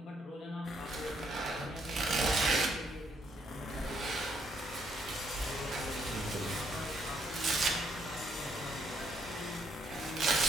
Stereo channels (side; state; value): both; normal; correlation 0.72